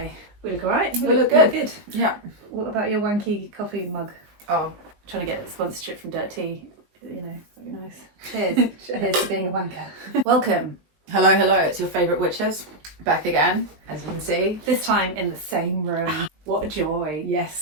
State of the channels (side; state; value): left; late; 19 ms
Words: We look alright? We look good. Good. Yeah. What about your wanky coffee mug? Oh, Trying to get sponsorship from Dirt Tea. You know, that'd be nice. Cheers. Cheers for being a wanker. Welcome. hello. It's your favourite witches. Back again, as you can see. This time in the same room. What a joy.